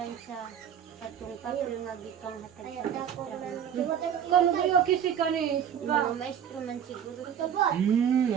sa patong-patong nga gitong hatag sa maestra. Kano ba yung kisi ka ni? Mga maestro man siguro.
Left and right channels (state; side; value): quieter; left; 8.8 dB